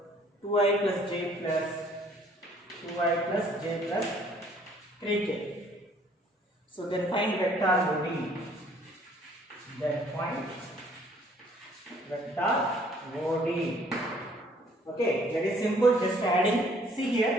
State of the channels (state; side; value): normal; both; correlation 0.60